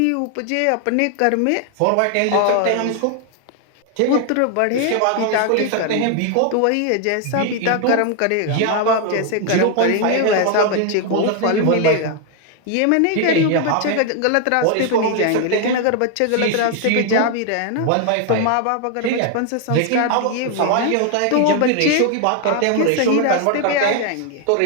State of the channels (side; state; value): both; different; correlation 0.01